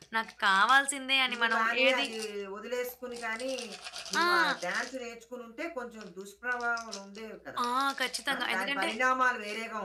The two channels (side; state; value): both; identical; correlation 1.00